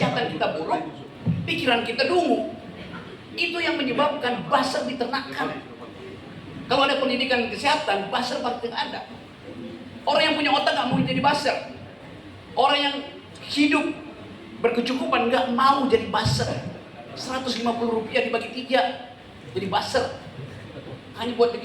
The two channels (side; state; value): both; identical; correlation 1.00